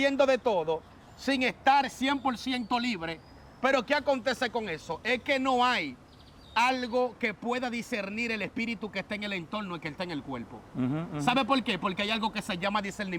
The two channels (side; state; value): both; identical; correlation 1.00